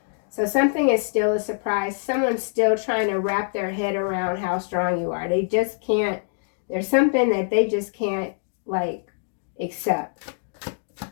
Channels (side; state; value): right; silent; digital silence